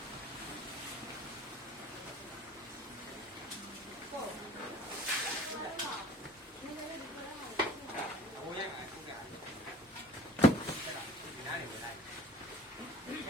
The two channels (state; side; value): normal; both; correlation 0.47